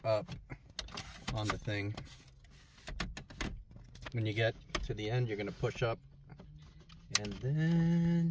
up on the thing. When you get to the end, you're going to push up and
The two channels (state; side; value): identical; both; correlation 1.00